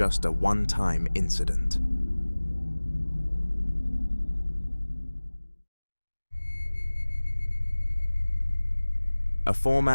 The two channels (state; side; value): inverted; both; correlation -1.00